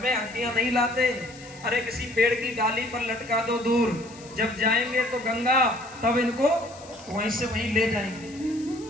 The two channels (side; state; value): left; noise; hiss, 21 dB below the sound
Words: हड्डियां नहीं लाते, अरे किसी पेड़ की डाली पर लटका दो दूर, जब जाएंगे तो गंगा तब इनको वहीं से वहीं ले जाएंगे।